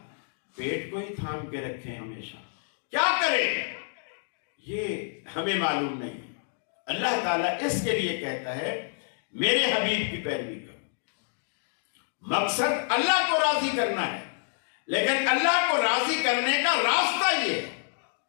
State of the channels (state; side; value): silent; right; digital silence